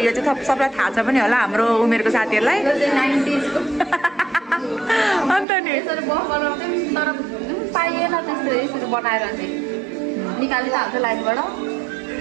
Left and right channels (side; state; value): left; drops out; at 5.5 s